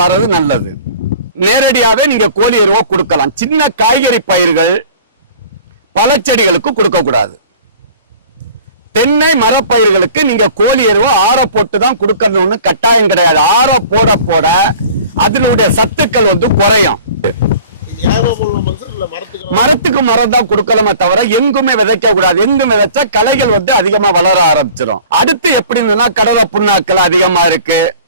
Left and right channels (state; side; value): inverted; both; correlation -0.45